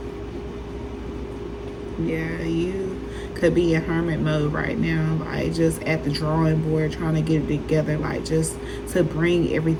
Yeah, you could be in hermit mode right now, like just at the drawing board, trying to get it together, like just to bring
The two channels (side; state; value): both; identical; correlation 1.00